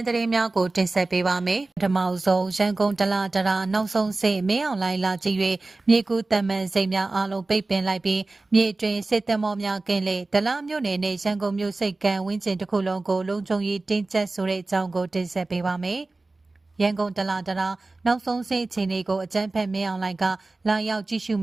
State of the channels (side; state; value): left; quieter; 3.3 dB